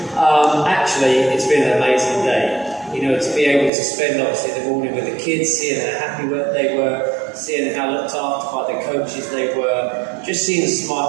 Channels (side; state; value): left; drops out; at 3.7 s